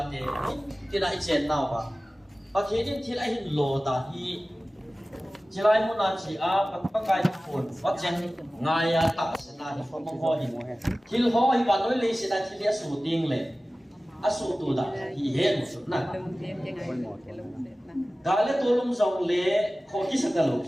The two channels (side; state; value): both; normal; correlation 0.97